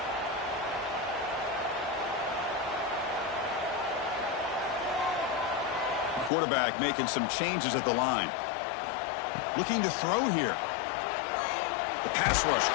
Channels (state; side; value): drops out; right; at 6.3 s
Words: Quarterback making some changes at the line. Looking to throw here. The pass rush